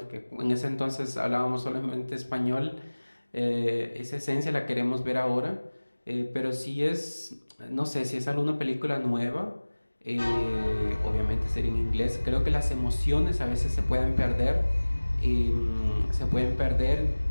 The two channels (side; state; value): both; inverted; correlation -1.00